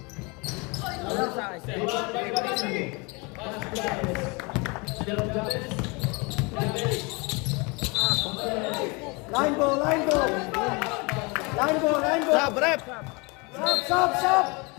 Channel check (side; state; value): right; quieter; 28.6 dB